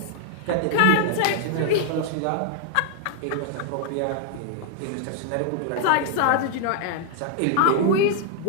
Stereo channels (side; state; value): both; different; correlation 0.00